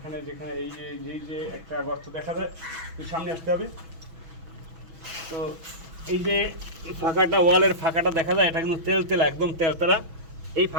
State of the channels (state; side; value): late; left; 6.1 ms